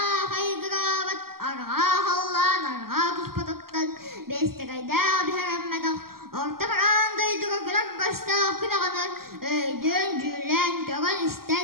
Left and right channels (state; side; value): late; left; 0.93 ms